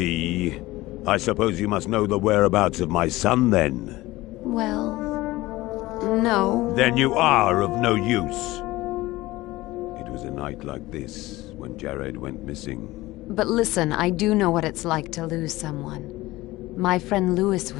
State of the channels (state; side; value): quieter; right; 18.7 dB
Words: I suppose you must know the whereabouts of my son, then? Well, no. Then you are of no use. It was a night like this when Jared went missing. But listen, I do know what it's like to lose someone. My friend Lewis